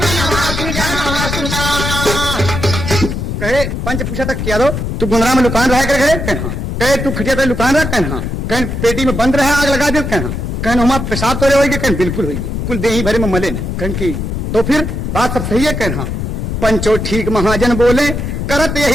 कहे पंच पूछा तक क्या दो, तू गुंदरा में दुकान रहा कर घरे? कहना कहे तू खटिया पे दुकान रहा? कहना कहीं पेटी में बंद रहे, आग लगा दे? कहना कहीं हमारा पेशाब तो होगी? कहीं बिल्कुल होगी, कुल देही भरे में मले ने। कहीं की तो फिर बात सब सही है? कहना पंचो ठीक महाजन बोले, करत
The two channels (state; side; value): noise; left; rumble, 3 dB below the sound